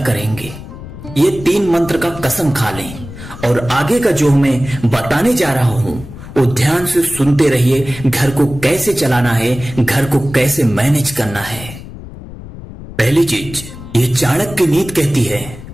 करेंगे। ये 3 मंत्र का कसम खा लें। और आगे का जो मैं बताने जा रहा हूं वो ध्यान से सुनते रहिए। घर को कैसे चलाना है, घर को कैसे मैनेज करना है। पहली चीज, ये चाणक्य नीति कहती है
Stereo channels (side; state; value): left; noise; rumble, 14 dB below the sound